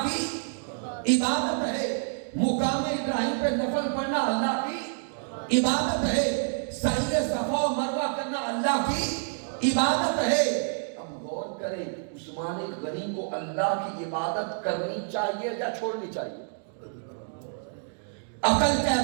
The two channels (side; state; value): left; silent; 59 dB below the other